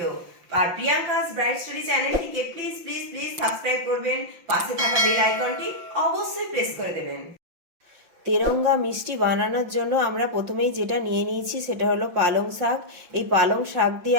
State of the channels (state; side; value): late; left; 5.8 ms